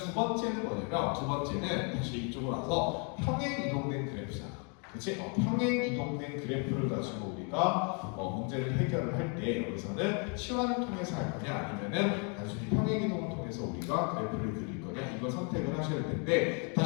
번째는 뭐냐면 두 번째는 다시 이쪽으로 와서 평행 이동된 그래프잖아. 그치? 평행 이동된 그래프를 가지고 우리가 문제를 해결을 할 때 여기서는 치환을 통해서 할 거냐 아니면은 단순히 평행 이동을 통해서 우리가 그래프를 그릴 거냐 이걸 선택을 하셔야 되는데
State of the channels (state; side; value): quieter; right; 37.5 dB